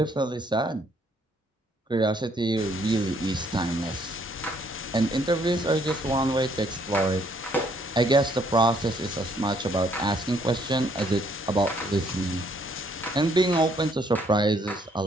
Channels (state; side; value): normal; both; correlation 0.67